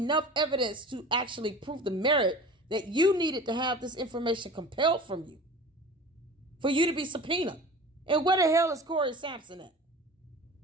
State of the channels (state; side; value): normal; both; correlation 0.38